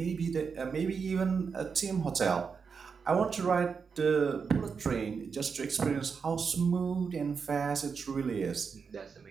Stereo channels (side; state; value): left; quieter; 5.7 dB